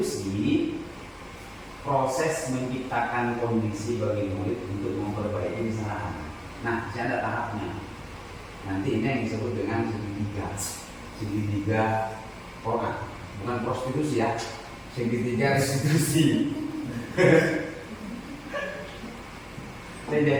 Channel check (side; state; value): both; identical; correlation 1.00